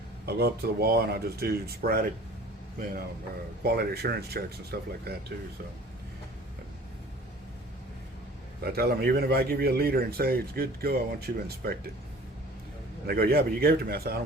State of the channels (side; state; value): both; normal; correlation 0.46